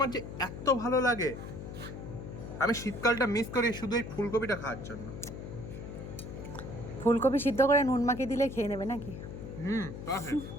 যে এত ভালো লাগে, আমি শীতকালটা মিস করি শুধু এই ফুলকপিটা খাওয়ার জন্য। ফুলকপি সিদ্ধ করে নুন মাখিয়ে দিলে খেয়ে নেবে নাকি? পারফেক্ট।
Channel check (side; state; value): left; noise; hum, 9 dB below the sound